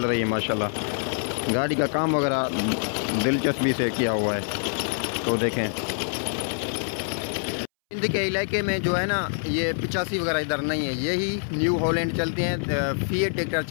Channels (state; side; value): silent; right; 61 dB below the other